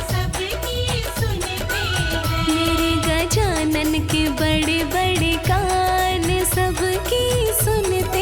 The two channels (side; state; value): both; identical; correlation 1.00